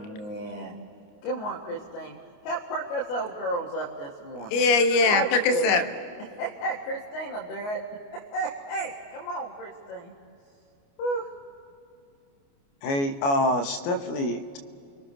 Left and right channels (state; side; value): late; right; 29 ms